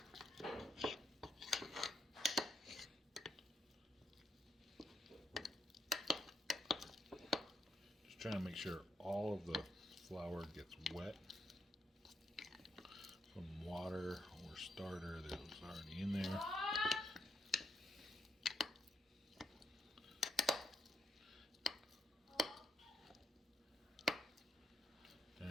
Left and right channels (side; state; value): both; normal; correlation 0.77